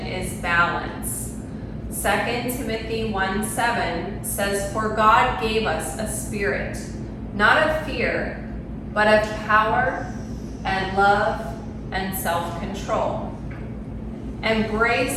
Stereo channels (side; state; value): both; identical; correlation 1.00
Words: is balance. 2 Timothy 1:7 says, "For God gave us a spirit, not of fear, but of power and love and self-control."